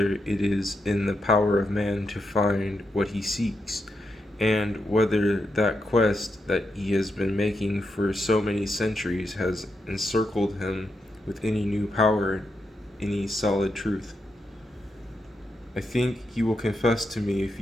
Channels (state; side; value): normal; both; correlation 0.84